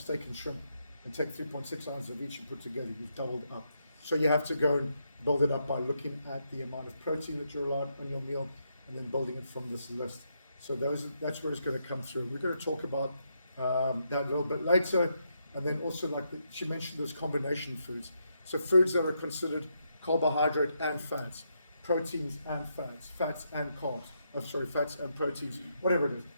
and shrimp and take 3.6 ounces of each and put together. You've doubled up. So you have to go and build it up by looking at the amount of protein that you're allowed on your meal and then building it from this list. So that's where it's going to come through. We're going to talk about that a little bit later. And then also, like she mentioned, those combination foods. So foods that are considered carbohydrate and fats, proteins and fats, fats and carbs. Oh, sorry, fats and proteins, whatever it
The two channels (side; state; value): both; inverted; correlation -0.80